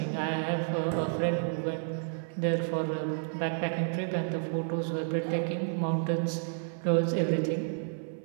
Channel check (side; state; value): left; silent; 55 dB below the other